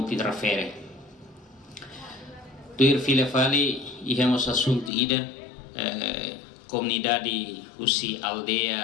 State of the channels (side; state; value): right; drops out; at 4.9 s